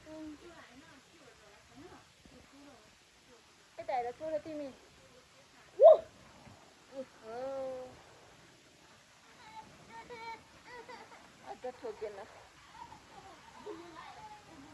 छ यता हेर छोड तिमी अझ ठोकेन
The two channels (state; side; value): identical; both; correlation 1.00